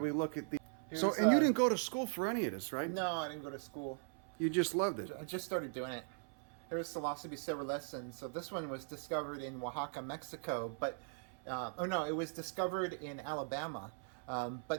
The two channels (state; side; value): silent; left; 51 dB below the other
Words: look at the. And you didn't go to school for any of this, right? No, I didn't go to school. You just loved it. I just started doing it. Here's Psilocybe cerulescens. So this one was discovered in Oaxaca, Mexico, but it was discovered in Alabama.